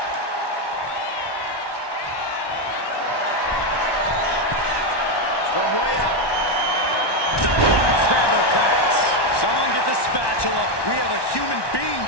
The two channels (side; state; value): right; late; 1.1 ms